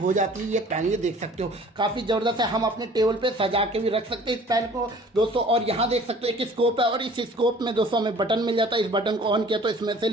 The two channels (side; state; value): both; normal; correlation 0.50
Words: जाती है ये पेन, ये देख सकते हो काफी जबरदस्त है। हम अपने टेबल पे सजा के भी रख सकते हैं इस पेन को दोस्तों। और यहाँ देख सकते हो एक स्कोप है और इस स्कोप में दोस्तों हमें बटन मिल जाता है, इस बटन को ऑन किया तो इसमें से